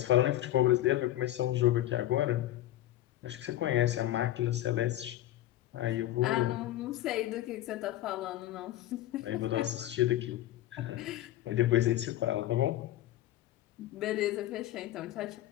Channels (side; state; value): right; quieter; 14.2 dB